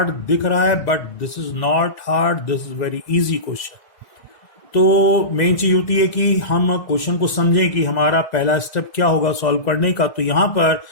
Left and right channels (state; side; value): late; right; 2.0 ms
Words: दिख रहा है, but this is not hard, this is very easy question. तो मेन चीज होती है कि हम क्वेश्चन को समझें कि हमारा पहला स्टेप क्या होगा सॉल्व करने का. तो यहां पर